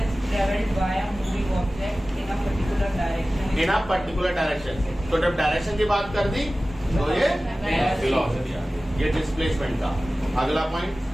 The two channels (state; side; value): normal; both; correlation 0.97